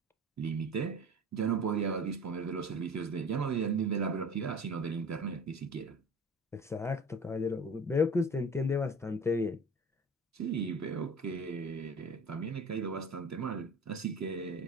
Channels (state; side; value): normal; both; correlation 0.39